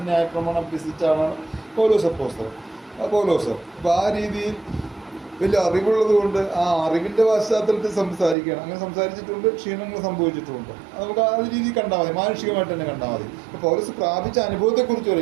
ന്യായപ്രമാണം അഭ്യസിച്ച ആളാണ് പൗലോസ് അപ്പോസ്തലൻ. പൗലോസ് അപ്പോൾ ആ രീതിയിൽ വലിയ അറിവുള്ളത് കൊണ്ട് ആ അറിവിൻ്റെ പശ്ചാത്തലത്തിൽ സംസാരിക്കുകയാണ്. അങ്ങനെ സംസാരിച്ചിട്ടുണ്ട്, ക്ഷീണങ്ങൾ സംഭവിച്ചിട്ടുണ്ട്. നമുക്ക് ആ രീതിയിൽ കണ്ടാൽ മതി, മാനുഷികമായിട്ട് തന്നെ കണ്ടാൽ മതി. അപ്പോൾ പൗലോസ് പ്രാപിച്ച അനുഭവത്തെക്കുറിച്ച്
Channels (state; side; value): drops out; left; at 8.3 s